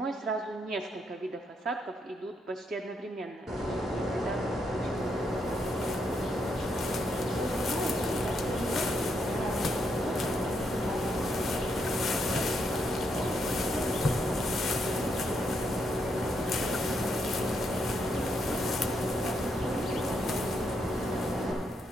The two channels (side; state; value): both; normal; correlation 0.78